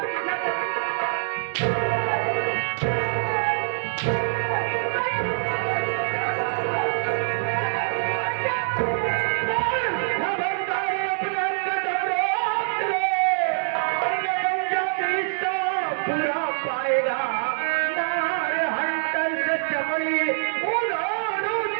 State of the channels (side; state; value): left; silent; digital silence